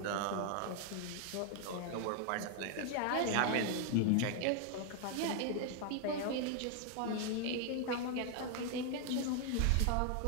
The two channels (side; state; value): both; different; correlation 0.00